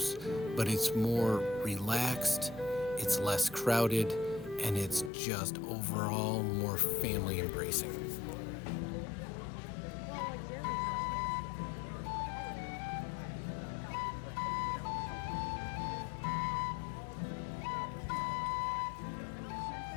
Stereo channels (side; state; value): right; drops out; at 5.1 s